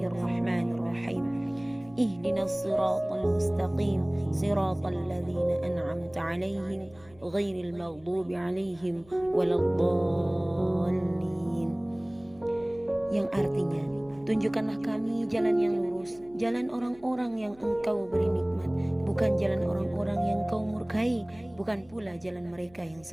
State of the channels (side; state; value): left; noise; hum, 26 dB below the sound